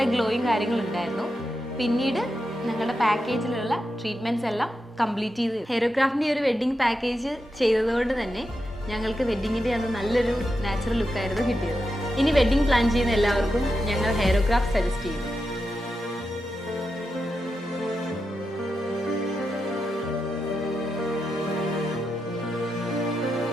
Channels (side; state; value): both; normal; correlation 0.87